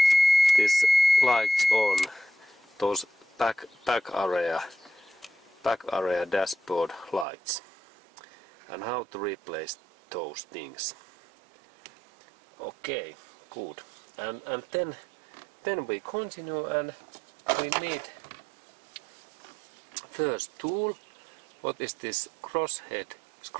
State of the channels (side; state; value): left; drops out; at 7.2 s